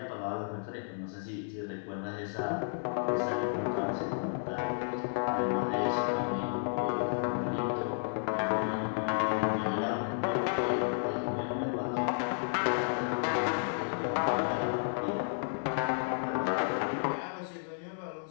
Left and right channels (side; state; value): right; silent; digital silence